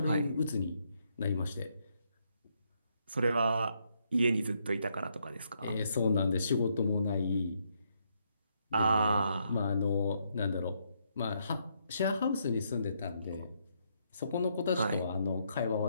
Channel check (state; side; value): inverted; both; correlation -0.75